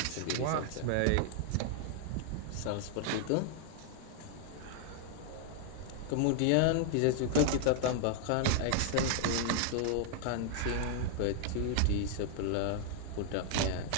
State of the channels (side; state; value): both; different; correlation -0.01